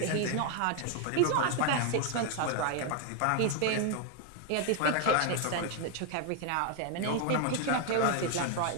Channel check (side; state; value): both; different; correlation 0.00